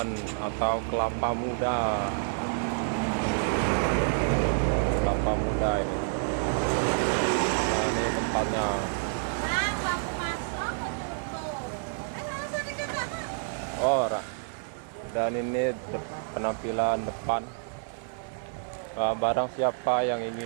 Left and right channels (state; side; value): silent; left; digital silence